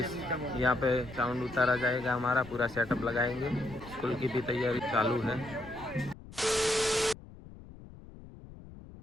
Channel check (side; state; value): left; noise; rumble, 17 dB below the sound